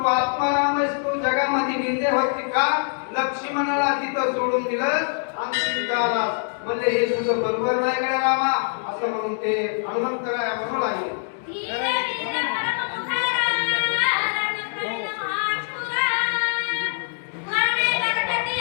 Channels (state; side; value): silent; right; digital silence